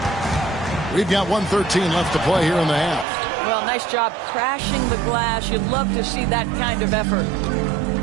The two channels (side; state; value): left; drops out; at 3.1 s